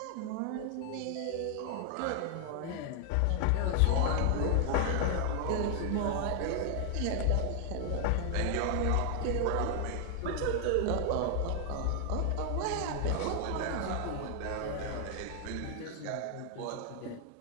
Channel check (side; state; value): both; different; correlation 0.00